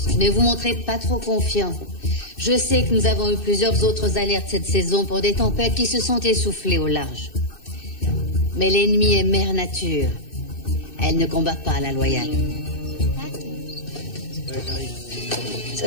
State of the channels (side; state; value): right; late; 2.6 ms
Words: Ne vous montrez pas trop confiant. Je sais que nous avons eu plusieurs autres alertes cette saison pour des tempêtes qui se sont essoufflées au large. Mais l'ennemi est mère nature. Elle ne combat pas à la loyale. Ça